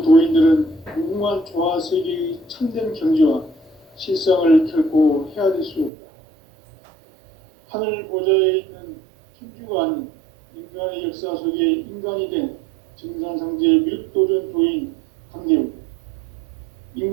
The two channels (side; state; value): left; drops out; at 5.9 s